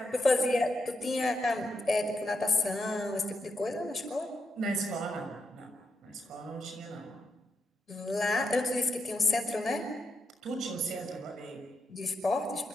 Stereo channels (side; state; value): both; normal; correlation 0.83